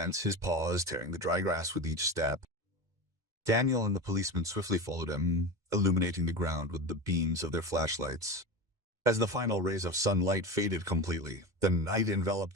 his paws tearing the dry grass with each step. Daniel and the policeman swiftly followed him, illuminating the ground with the beams of their flashlights. As the final rays of sunlight faded completely, the night enveloped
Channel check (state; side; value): late; left; 2.2 ms